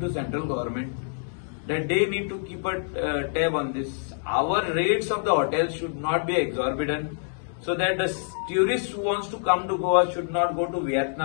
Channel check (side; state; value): right; silent; digital silence